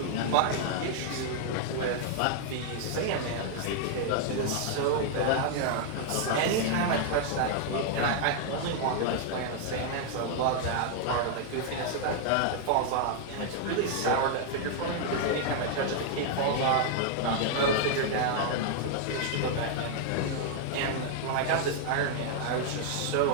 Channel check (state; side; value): different; both; correlation 0.00